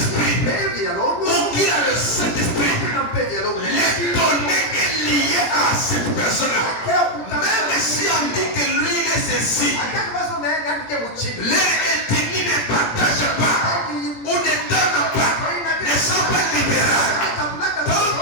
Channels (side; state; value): right; late; 17 ms